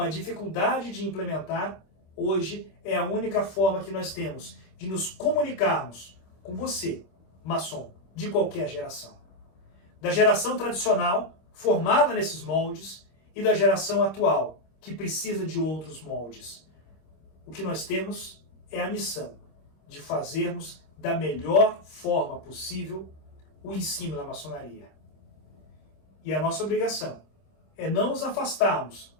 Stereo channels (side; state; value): right; late; 26 ms